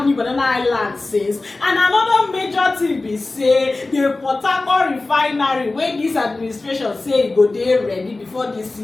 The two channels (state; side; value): quieter; right; 3.3 dB